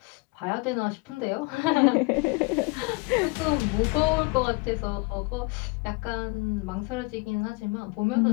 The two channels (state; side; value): quieter; right; 27.5 dB